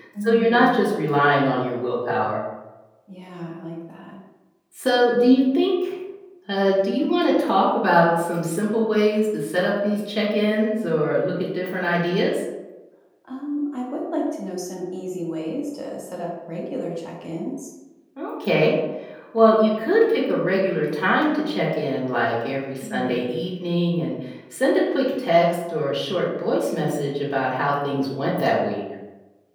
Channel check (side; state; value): both; identical; correlation 1.00